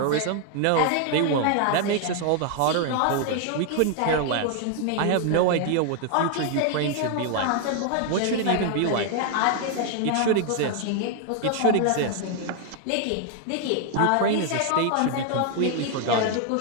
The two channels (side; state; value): both; different; correlation 0.00